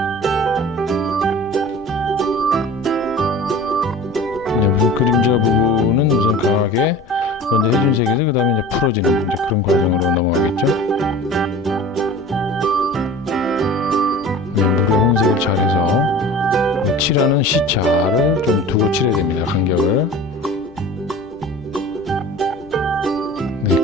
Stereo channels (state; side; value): normal; both; correlation 0.39